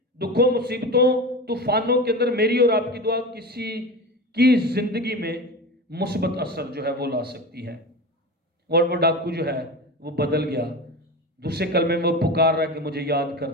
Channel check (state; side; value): normal; both; correlation 0.27